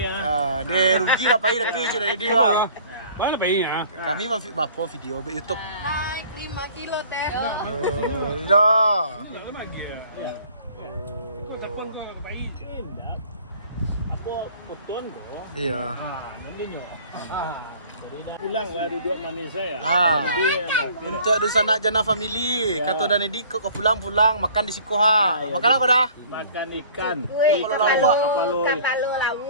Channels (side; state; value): both; inverted; correlation -0.50